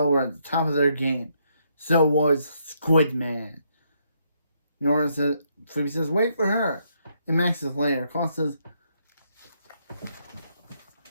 were at the top of their game. So was Squidman. Nora says, Phoebe says, wait for her. And Max says later. Carl says,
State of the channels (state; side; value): inverted; both; correlation -0.74